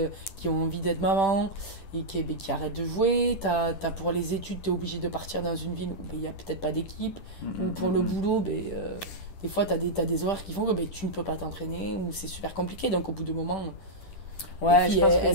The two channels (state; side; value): late; right; 10 ms